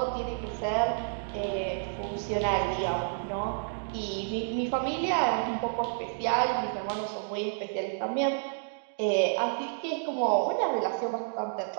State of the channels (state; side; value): silent; left; digital silence